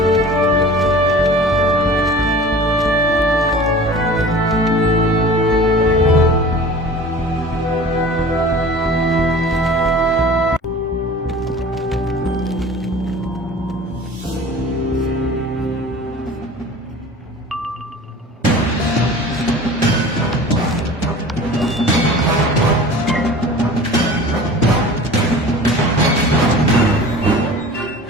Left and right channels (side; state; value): both; normal; correlation 0.41